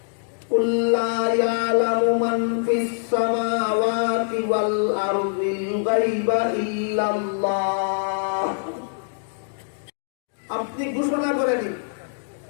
কুল লা ইয়ালামু মান ফিস সামাওয়াতি ওয়াল আরদিল গায়বা ইল্লাল্লাহ। আপনি ঘোষণা করে দিন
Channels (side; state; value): right; silent; digital silence